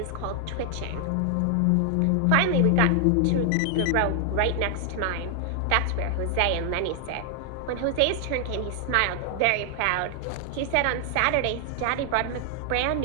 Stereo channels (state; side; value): different; both; correlation 0.00